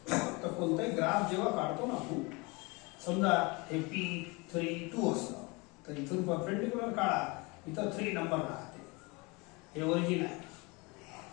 तर कोणताही ग्राफ जेव्हा काढतो ना आपण, समजा हे P3 2 असतं, तर इथून परपेंडिक्युलर काढा, इथं 3 नंबर राहते, हे ओरिजिन आहे,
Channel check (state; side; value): quieter; right; 27.1 dB